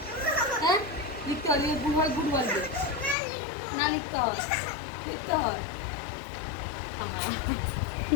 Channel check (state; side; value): drops out; right; at 3.2 s